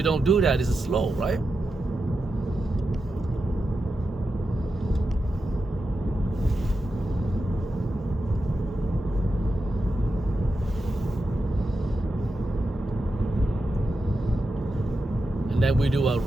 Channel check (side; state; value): both; normal; correlation 0.89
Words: don't do that, it's slow, right? And then we do a